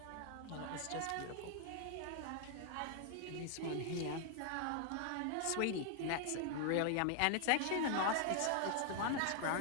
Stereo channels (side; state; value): both; different; correlation 0.00